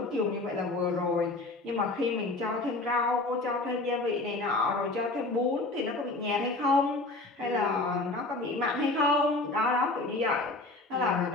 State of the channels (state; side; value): quieter; right; 3.1 dB